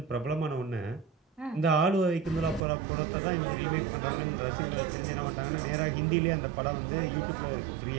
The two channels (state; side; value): drops out; left; at 2.7 s